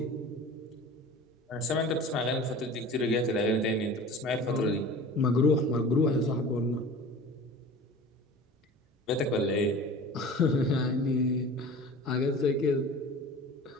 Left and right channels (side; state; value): both; normal; correlation 0.39